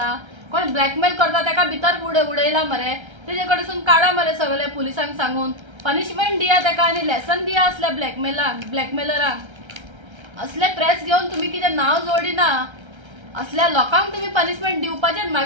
कोण ब्लॅकमेल करता तेका भितर उडयला मरे तेजे कडसून काडा मरे सगळे पुलिसांक सांगून पनिशमेंट दिया तेका आनी लेसन दिया असल्या ब्लॅकमेलरांक असले प्रेस घेवन तुम्ही कितें नांव जोडिना असल्या लोकांक तुम्ही पनिशमेंट दिवपाचें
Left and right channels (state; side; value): late; left; 1.3 ms